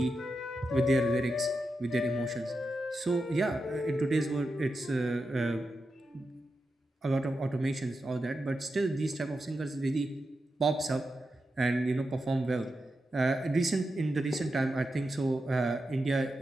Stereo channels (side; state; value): both; normal; correlation 0.89